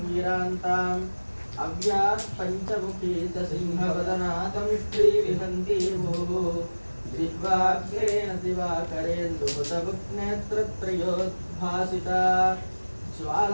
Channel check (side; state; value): both; inverted; correlation -1.00